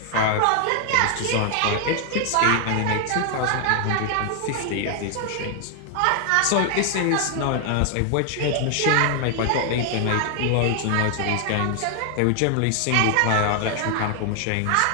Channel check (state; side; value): different; both; correlation 0.00